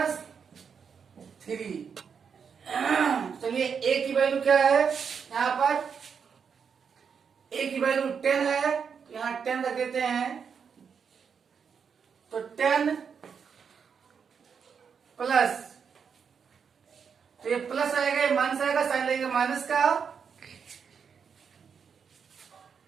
चलिए ए की वैल्यू क्या है, यहाँ पर ए की वैल्यू 10 है, यहाँ 10 रख देते हैं। तो 10 प्लस, तो ये प्लस आएगा, ये माइनस आएगा, साइन लगेगा माइनस का।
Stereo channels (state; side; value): quieter; left; 6.6 dB